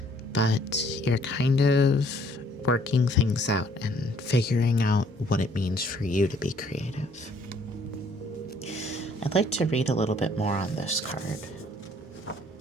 but you're kind of working things out and figuring out what it means for you to be creative. I'd like to read a little bit more on this card.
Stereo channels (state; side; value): normal; both; correlation 0.62